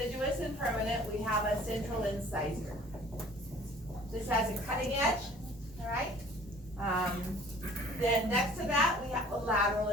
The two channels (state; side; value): normal; both; correlation 0.50